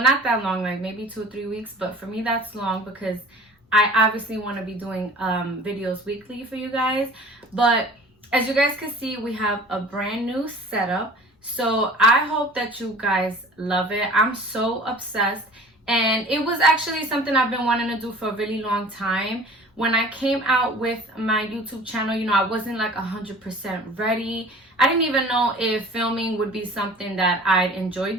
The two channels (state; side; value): normal; both; correlation 0.44